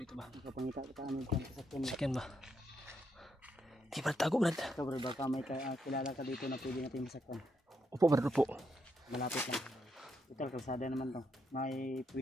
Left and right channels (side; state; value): both; normal; correlation 0.79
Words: dito ba? Magkapangita kita ano dyan sa sakyan mo. Sakyan ba? Di ba tago, Brad? Ito, Brad, baka may kilala ka dito na pwede natin masakyan. Upo, Brad, upo. Malapit lang. Ito, kalsada naman to. May